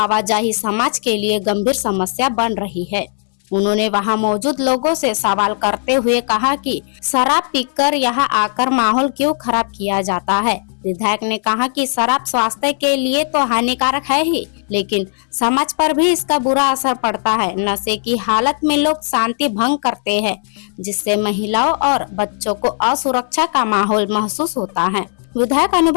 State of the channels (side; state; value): right; silent; 68 dB below the other